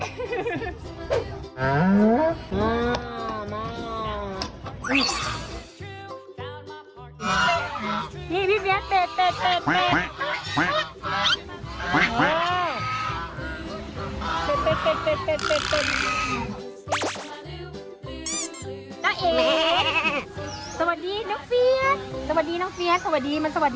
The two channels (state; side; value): identical; both; correlation 1.00